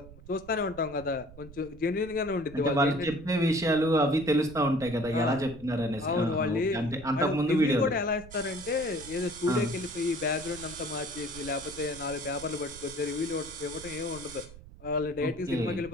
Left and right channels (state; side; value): noise; right; rumble, 18 dB below the sound